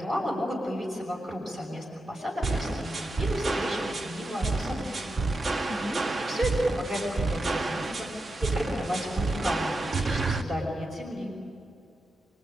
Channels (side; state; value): both; normal; correlation 0.88